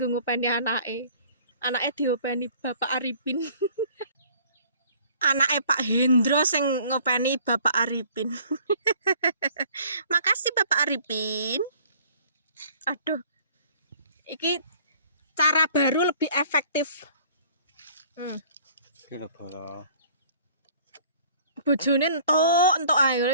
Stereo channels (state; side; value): inverted; both; correlation -0.54